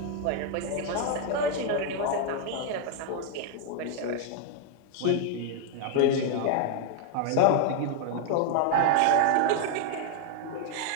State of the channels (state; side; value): different; both; correlation 0.00